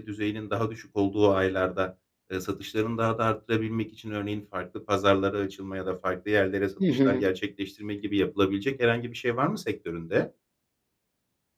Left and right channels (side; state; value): both; identical; correlation 1.00